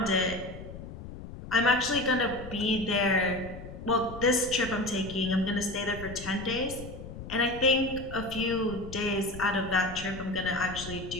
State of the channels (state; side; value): noise; left; rumble, 12 dB below the sound